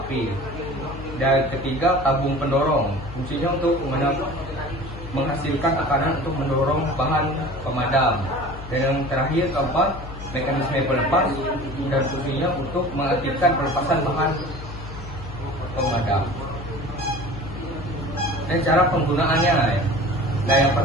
dan ketiga tabung pendorong, fungsinya untuk menghasilkan tekanan untuk mendorong bahan pemadam, dan yang terakhir keempat mekanisme pelepas dan fungsinya untuk mengaktifkan pelepasan bahan pemadam. Dan cara penggunaannya, nah yang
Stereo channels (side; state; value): left; noise; hum, 12 dB below the sound